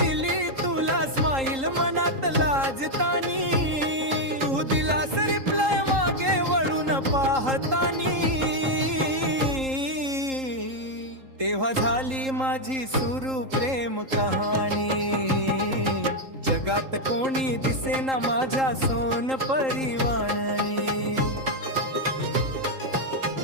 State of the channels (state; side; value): late; left; 3.8 ms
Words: तुला स्माईल मनात लाजतानी. तू दिलास रिप्लाय मागे वळून पाहतानी, तेव्हा झाली माझी सुरू प्रेम कहाणी. जगात कोणी दिसेना माझ्या सोनपरी वाणी.